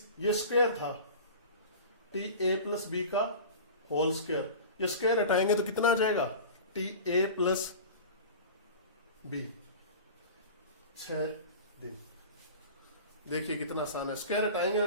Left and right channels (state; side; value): inverted; both; correlation -0.35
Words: ये स्क्वायर था टी ए प्लस बी का होल स्क्वायर। ये स्क्वायर हटाएंगे तो कितना आ जाएगा, टी ए प्लस बी 6 दिन। देखिए कितना आसान है, स्क्वायर हटाएंगे